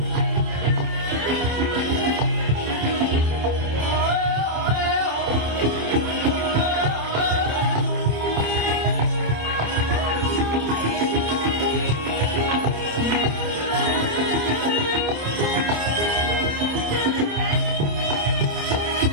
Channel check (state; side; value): late; left; 27 ms